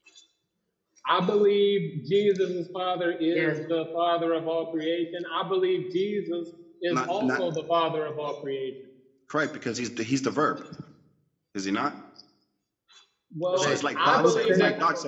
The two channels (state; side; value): identical; both; correlation 1.00